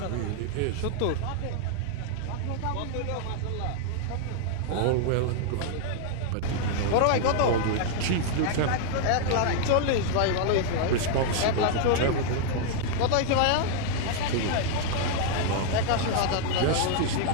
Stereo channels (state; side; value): different; both; correlation 0.00